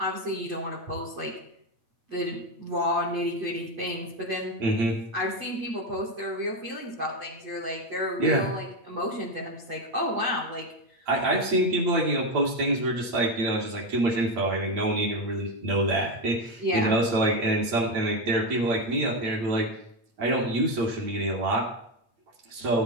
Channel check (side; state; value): left; late; 8.7 ms